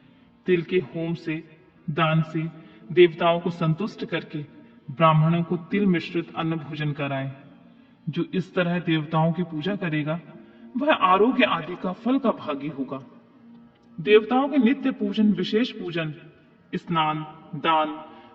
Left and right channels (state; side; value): identical; both; correlation 1.00